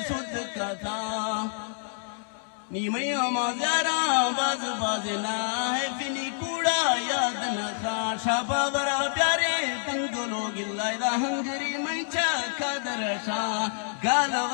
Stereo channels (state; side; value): silent; right; digital silence